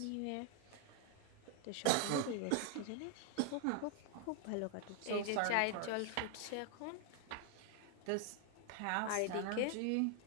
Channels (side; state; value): both; different; correlation 0.00